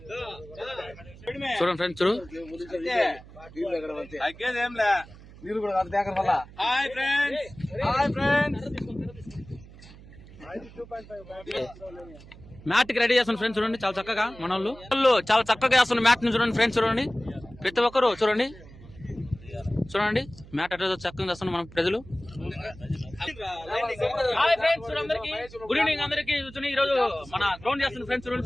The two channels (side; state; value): right; noise; hum, 19 dB below the sound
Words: చూడండి ఫ్రెండ్స్, చూడు హాయ్ ఫ్రెండ్స్ మ్యాట్ కి రెడీ చేస్తున్న ఫ్రెండ్స్. చూడండి చాలా చక్కగా మన వాళ్ళు చాలా చక్కగా చేస్తున్న మ్యాట్ ని చూడండి ఫ్రెండ్స్. చూడండి ప్రతి ఒక్కరు చూడండి చూడండి మ్యాట్ అట్లా చక్కగా చేస్తున్న మన ప్రజలు. హాయ్ ఫ్రెండ్స్, అందరికి గుడ్ ఈవినింగ్. అందరికి చూడండి ఈ రోజు మన గ్రౌండ్ చేస్తున్న ఫ్రెండ్స్ చూడండి